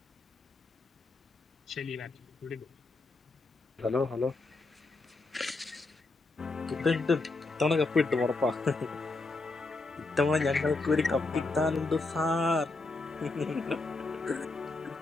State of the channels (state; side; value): quieter; right; 3.4 dB